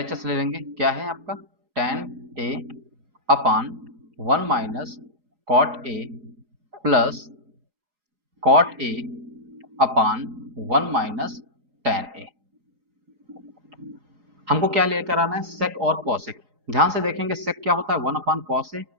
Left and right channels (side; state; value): left; late; 3.9 ms